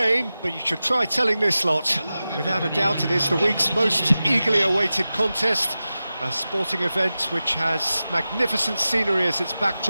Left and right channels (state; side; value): inverted; both; correlation -0.94